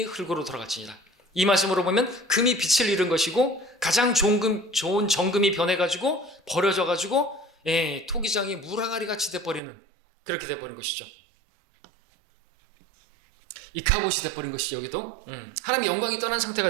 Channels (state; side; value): drops out; left; at 9.6 s